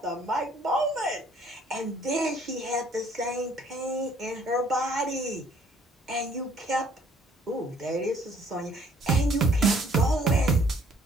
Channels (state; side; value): normal; both; correlation 0.61